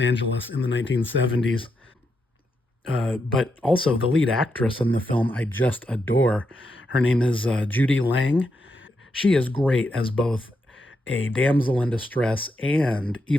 in the 1970s. But also, the lead actress in the film I just adore. Her name is Judy Lang. She is great as both a damsel in distress and,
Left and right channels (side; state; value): both; normal; correlation 0.83